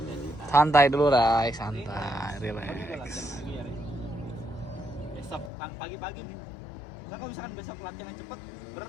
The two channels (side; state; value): right; drops out; at 5.5 s